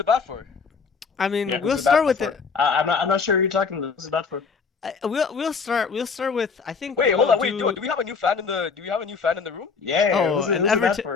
bat for? I mean, Yeah, who's we'll the bat start with for? it. I'm not sure who you're talking to. Who's the bat for? We'll start with. I think Wait, hold we'll on. Wait, do, do. do we have a new fan in the do we have a new fan in the room? Yeah, Oh, who's an the bat Everton.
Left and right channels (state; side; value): quieter; right; 5.3 dB